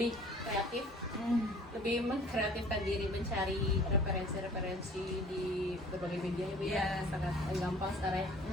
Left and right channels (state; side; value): normal; both; correlation 0.50